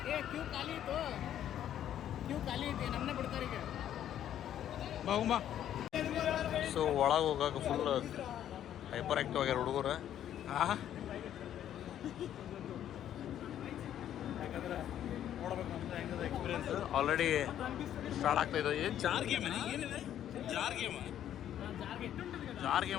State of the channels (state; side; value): quieter; right; 10.8 dB